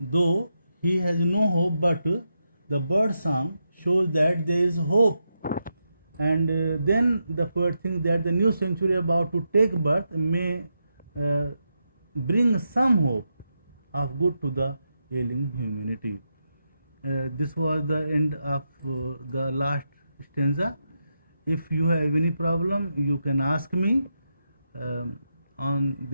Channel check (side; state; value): both; inverted; correlation -0.85